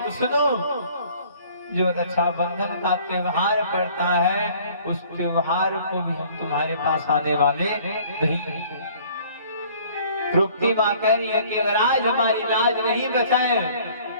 तो सुनो, जो रक्षाबंधन का त्योहार पड़ता है उस त्योहार को भी हम तुम्हारे पास आने वाले नहीं। तृप्ति माँ कह रही है कि अगर आज हमारी लाज नहीं बचाए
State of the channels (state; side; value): inverted; both; correlation -0.54